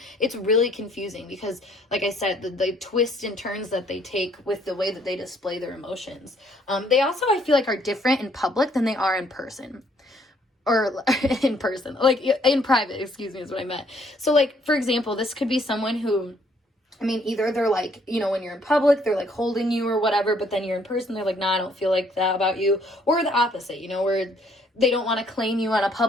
it's really confusing, because like I said, the twists and turns that they take with the way that they display their emotions. They also, I feel like, are different in public than they are in person. Or in person, like in private, excuse me, is what I meant. So like, for example, this could be someone who, I mean, either they're like, you know, when you're in public, they're like holding you or whatever, but then you're in person, they're like, nah, I don't feel like that about you. Or the opposite, you know, where they don't want to claim you on a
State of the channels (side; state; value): both; normal; correlation 0.65